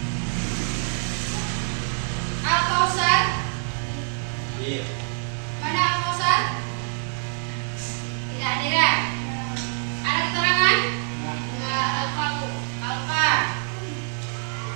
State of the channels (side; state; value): left; silent; 57 dB below the other